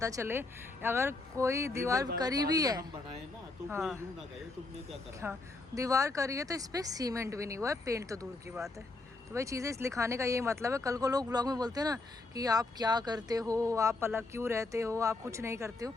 चले, अगर कोई दीवार करी भी है, हम बनाए ना तो हाँ, कोई यूं ना कहे तुमने क्या करा। हाँ, दीवार करी है तो इस पर सीमेंट भी नहीं हुआ है, पेंट तो दूर की बात है। तो भाई चीज़ें इस लिखाने का यही मतलब है। कल को लोग ब्लॉग में बोलते हैं ना कि आप क्या करते हो, आप अलग क्यों रहते हो, आप कुछ नहीं करते हो,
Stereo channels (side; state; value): right; quieter; 3.3 dB